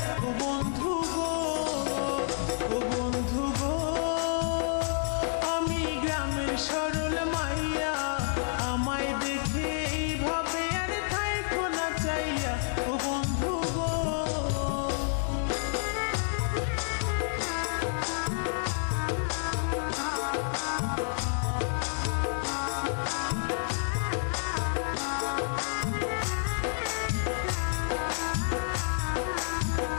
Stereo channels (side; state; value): right; silent; 55 dB below the other